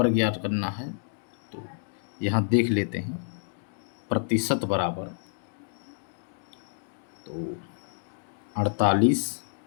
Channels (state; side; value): silent; right; digital silence